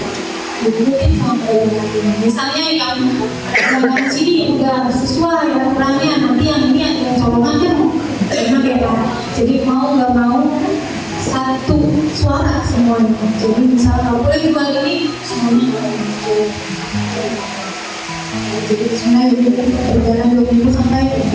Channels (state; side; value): identical; both; correlation 1.00